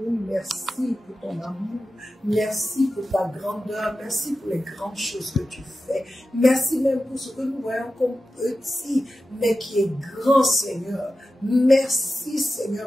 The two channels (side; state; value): both; normal; correlation 0.93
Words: Merci pour ton amour. Merci pour ta grandeur. Merci pour les grandes choses que tu fais. Merci même pour ce que nous voyons comme petit, mais qui est grand, Seigneur. Merci,